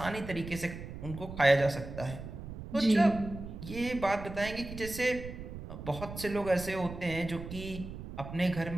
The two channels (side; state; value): right; noise; rumble, 10 dB below the sound